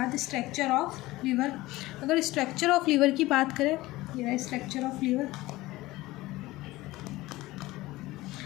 स्ट्रक्चर ऑफ लीवर। अगर स्ट्रक्चर ऑफ लीवर की बात करें, ये रहा structure of liver.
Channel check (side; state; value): right; quieter; 18.7 dB